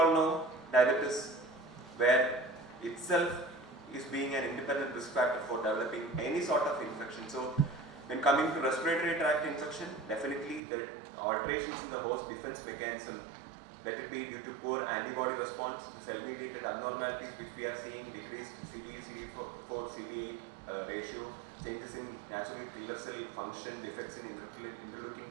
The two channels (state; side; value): drops out; left; at 10.6 s